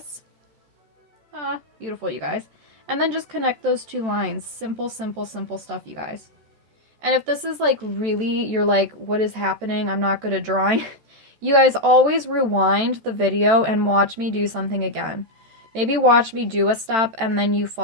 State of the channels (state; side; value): late; left; 13 ms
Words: Ah, beautiful, you guys. And then just connect those two lines. Simple, simple, simple stuff, you guys. And if this is like really, you're like, what is happening? I'm not good at drawing. You guys always rewind the video and watch me do something again. Maybe watch me do a step and then you